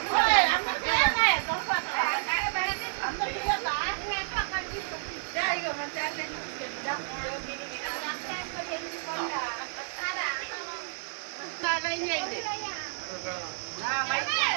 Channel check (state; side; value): silent; left; 58 dB below the other